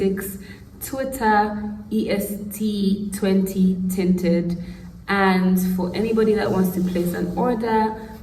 Twitter, EST20 Tinted. And for anybody that wants to place an order,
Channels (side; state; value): both; identical; correlation 1.00